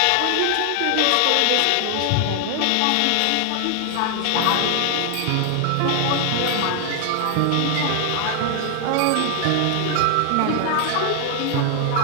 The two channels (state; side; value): different; both; correlation 0.00